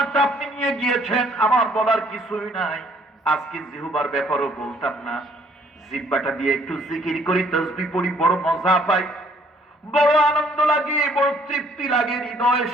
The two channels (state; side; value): normal; both; correlation 0.62